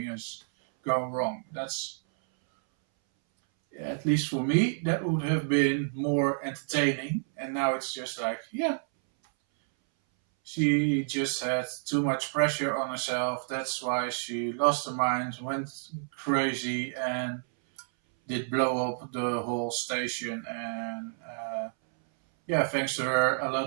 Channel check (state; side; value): silent; left; 58 dB below the other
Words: is going wrong. That's, at least for me, that would have been more entertaining. And now it's just like, yeah, she just had too much pressure on herself. That's why she lost her mind, went crazy, and did blow up the whole station. And yeah, thanks to her, a